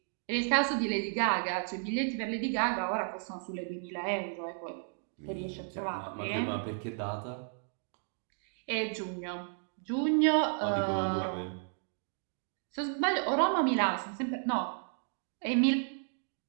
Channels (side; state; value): left; silent; 56 dB below the other